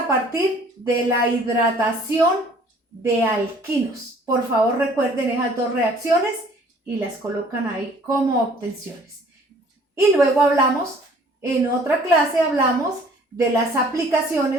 partir de la hidratación de alquinos. Por favor, recuerden esas dos reacciones y las colocan ahí como obtenciones. Y luego hablamos, en otra clase hablamos de las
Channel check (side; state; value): both; normal; correlation 0.55